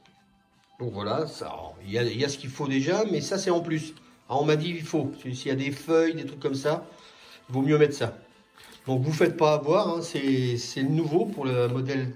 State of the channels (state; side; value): identical; both; correlation 1.00